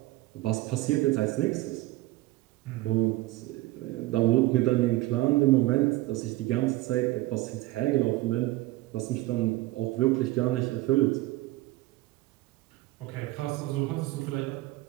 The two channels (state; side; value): quieter; left; 18.6 dB